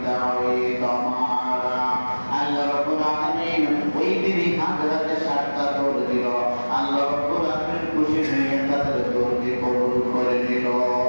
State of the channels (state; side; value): inverted; both; correlation -1.00